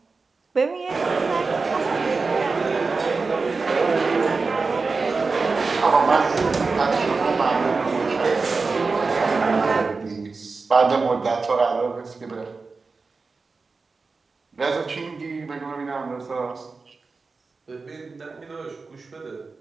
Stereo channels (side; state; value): left; quieter; 4.2 dB